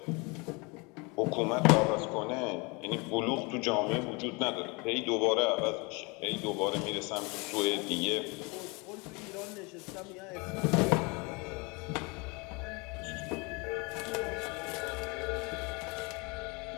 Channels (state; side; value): quieter; right; 28.7 dB